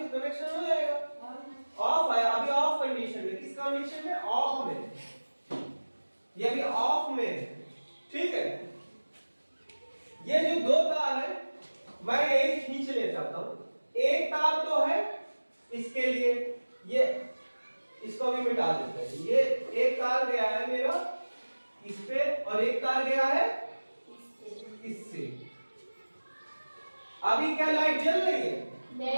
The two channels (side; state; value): both; inverted; correlation -1.00